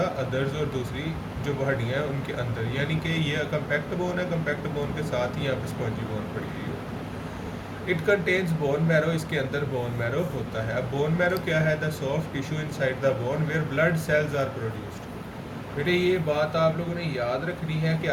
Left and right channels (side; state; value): both; identical; correlation 1.00